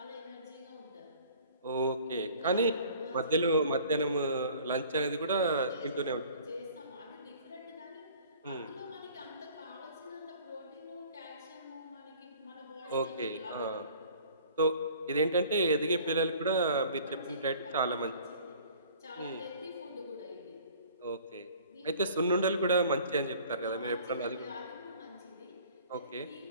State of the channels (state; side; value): inverted; both; correlation -0.50